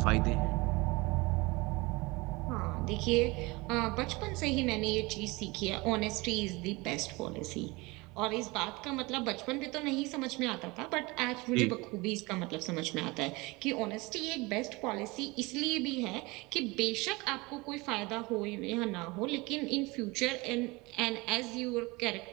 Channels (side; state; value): left; quieter; 24.1 dB